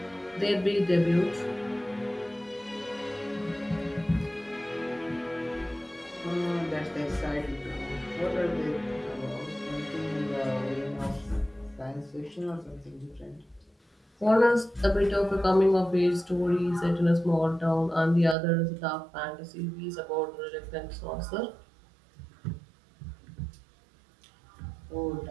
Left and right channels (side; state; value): left; drops out; at 18.4 s